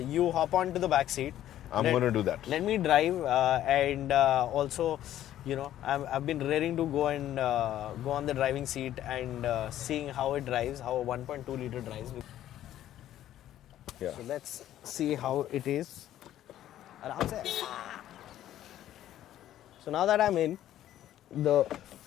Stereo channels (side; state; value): right; quieter; 12.4 dB